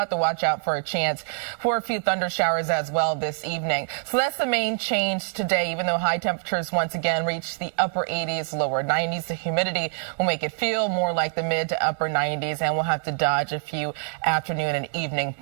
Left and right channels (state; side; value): silent; left; digital silence